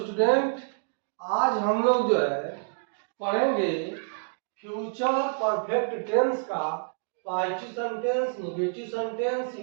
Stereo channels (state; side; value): silent; left; digital silence